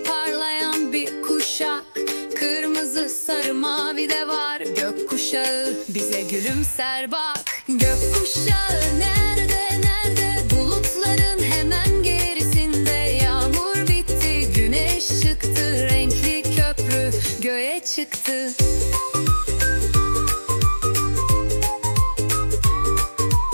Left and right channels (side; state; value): both; inverted; correlation -1.00